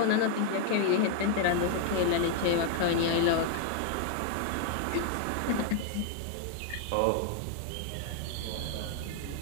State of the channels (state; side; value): different; both; correlation 0.00